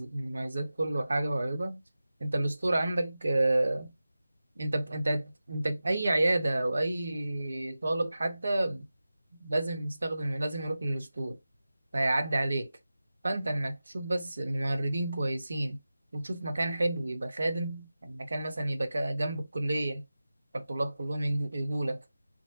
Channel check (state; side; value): inverted; both; correlation -0.94